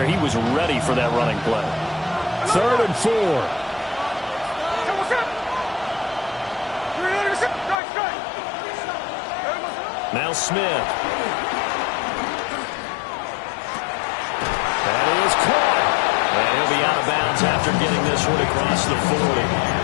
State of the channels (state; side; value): drops out; right; at 7.8 s